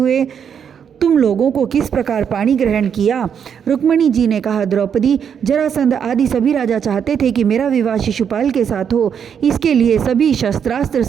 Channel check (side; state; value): left; quieter; 7.7 dB